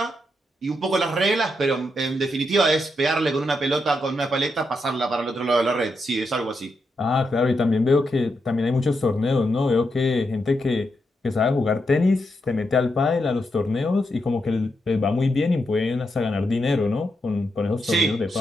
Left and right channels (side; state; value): both; normal; correlation 0.83